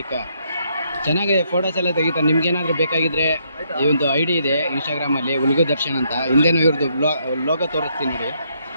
ಚೆನ್ನಾಗಿ ಫೋಟೋಸ್ ಎಲ್ಲ ತೆಗಿತಾರೆ. ನಿಮ್ಗೇನಾದರೂ ಬೇಕಾಗಿದ್ದರೆ ಈ ಒಂದು ಐ ಡಿ ಇದೆ ಇನ್ಸ್ಟಾಗ್ರಾಮಲ್ಲಿ, ಉಲ್ಗು ದರ್ಶನ್ ಅಂತ. ಹಿಂದೆನೂ ಇವ್ರದ್ದು ಲೋಗೋ ತೋರಿಸ್ತೀನಿ ನೋಡಿ.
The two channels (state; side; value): inverted; both; correlation -0.73